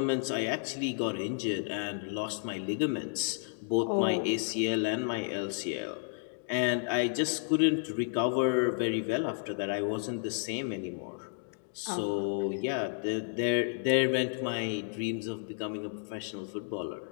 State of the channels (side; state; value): right; silent; digital silence